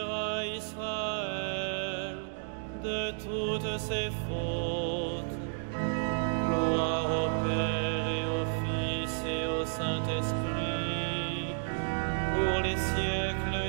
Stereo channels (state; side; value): silent; left; digital silence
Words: Israël de toutes ses fautes. Gloire au Père et au Fils et au Saint-Esprit, pour les